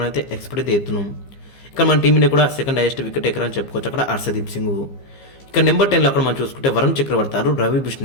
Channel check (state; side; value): late; right; 15 ms